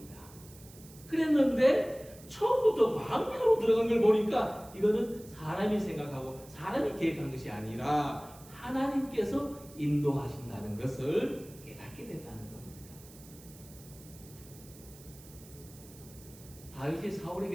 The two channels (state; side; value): noise; right; hiss, 21 dB below the sound